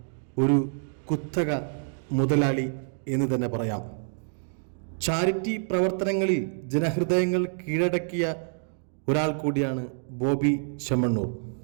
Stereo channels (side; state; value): left; silent; digital silence